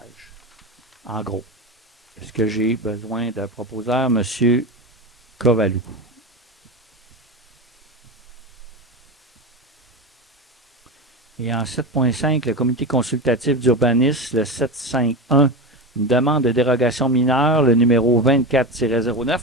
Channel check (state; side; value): normal; both; correlation 0.21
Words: En gros. Est-ce que j'ai besoin d'un proposeur, M. Kovalou? Et en 7.5, le comité consultatif d'urbanisme, le 751, une demande de dérogation mineure, le numéro 24-09,